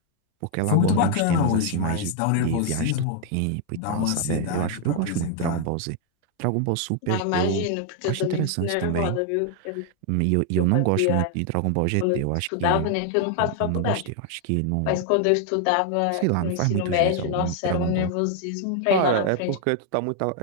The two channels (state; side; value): different; both; correlation 0.00